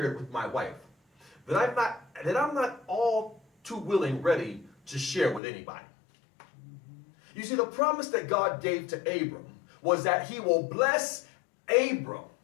with my wife, that I'm not all too ready to share with anybody. You see, the promise that God gave to Abram was that he will bless Abram,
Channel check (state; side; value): drops out; right; at 5.4 s